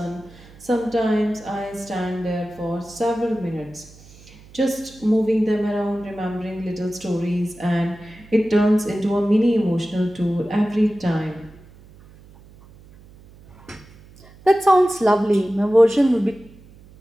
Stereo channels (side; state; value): right; noise; hum, 23 dB below the sound